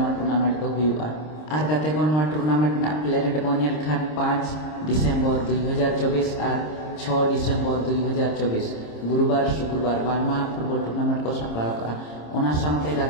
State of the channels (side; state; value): right; late; 26 ms